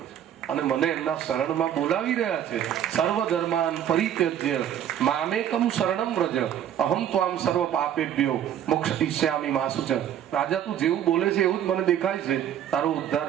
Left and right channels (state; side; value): quieter; left; 10.2 dB